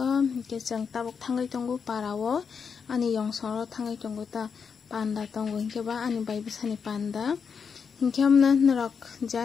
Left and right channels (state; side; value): quieter; right; 6.2 dB